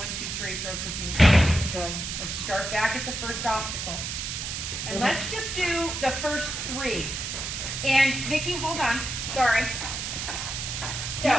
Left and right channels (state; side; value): noise; right; hiss, 4 dB below the sound